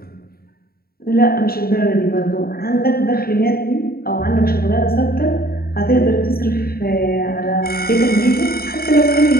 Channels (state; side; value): late; right; 0.44 ms